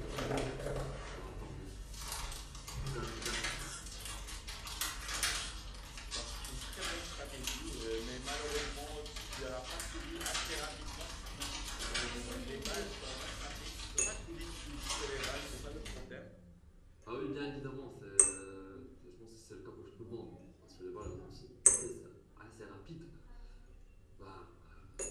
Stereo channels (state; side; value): identical; both; correlation 1.00